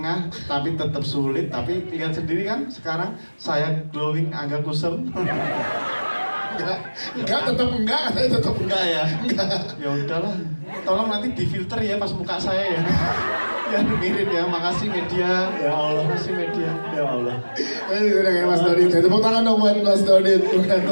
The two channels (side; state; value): both; inverted; correlation -1.00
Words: tapi tetap sulit, tapi lihat sendiri kan sekarang saya glowing, Angga kusem. Enggak, tetap enggak Ya ya udahlah, tolong nanti difilter ya pas muka saya ya. Ya mirip ya, makasih media. Ya Allah. Makasih media. Ya Allah. Udah kayak Mas Dodit, tepuk tangan dong buat Mas Dodit.